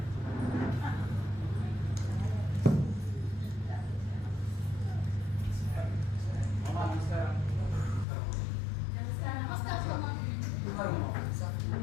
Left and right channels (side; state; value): right; drops out; at 8.1 s